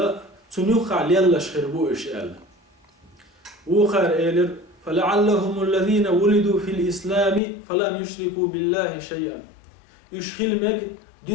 تنوخ يلا شخربو إشيال وخار إيلر فلعلهم الذين ولدوا في الإسلام فلم يشركوا بالله شيئا يشخل مج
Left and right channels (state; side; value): drops out; right; at 7.4 s